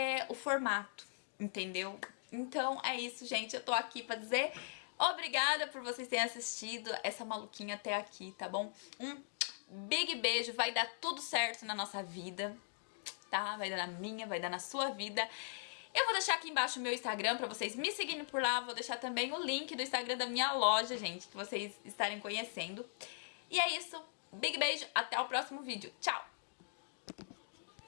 o formato, entendeu? Então é isso, gente. Eu tô aqui pra dizer obrigada por vocês terem assistido essa maluquinha até aqui, tá bom? Um big beijo, vai dar tudo certo na nossa vida, tá? Vai dar na minha, vai dar na sua vida. Eu vou deixar aqui embaixo o meu Instagram pra vocês me seguirem por lá. Vou deixar também o link do Instagram da minha loja, gente, que vocês estarem conhecendo. E é isso. Big beijo. Até o próximo vídeo. Tchau!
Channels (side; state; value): right; silent; digital silence